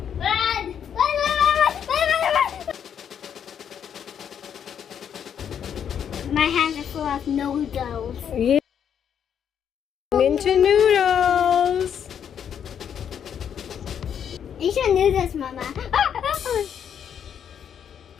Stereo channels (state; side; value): quieter; right; 8.4 dB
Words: Run! Run! My hands are full of noodles. Yeah. Into noodles. You should noodles, Mama.